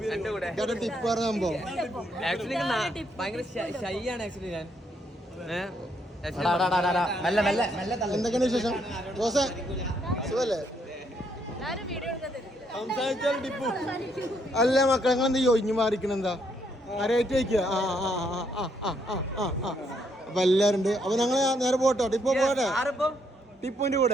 ടിപ്പ് പറഞ്ഞ സംഭവം എന്തൊക്കെയാണ് വിശേഷം? ജോസേ സുഖല്ലേ? അല്ല മക്കളെ നിങ്ങളെന്താ ഒഴിഞ്ഞു മാറിക്കണെന്താ? ആരായിട്ട് വയ്ക്കുക? അപ്പൊ എല്ലാരും ഉണ്ട്. അപ്പൊ ഞങ്ങള് നേരെ പോട്ടോ, ടിപ്പോ പോട്ടെ, ടിപ്പുവിന്റെ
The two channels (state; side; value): normal; both; correlation 0.73